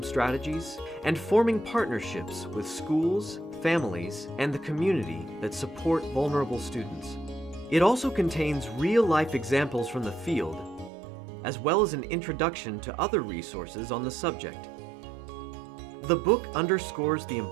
strategies, and forming partnerships with schools, families, and the community that support vulnerable students. It also contains real-life examples from the field, as well as an introduction to other resources on the subject. The book underscores the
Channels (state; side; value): drops out; left; at 10.9 s